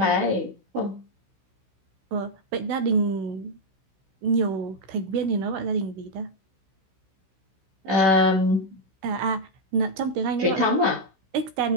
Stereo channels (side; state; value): left; late; 16 ms